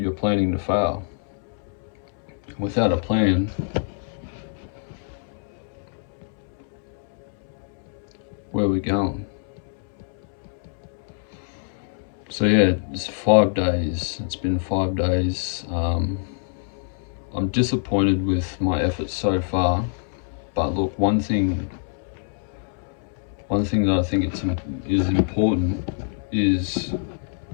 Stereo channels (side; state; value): right; silent; 62 dB below the other